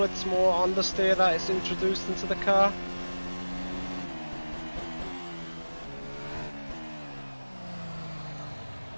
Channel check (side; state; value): both; inverted; correlation -1.00